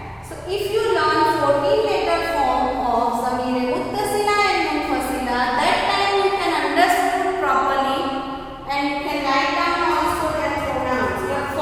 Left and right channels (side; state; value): both; identical; correlation 1.00